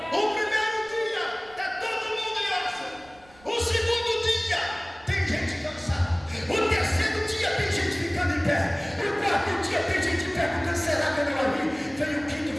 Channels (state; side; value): noise; right; rumble, 26 dB below the sound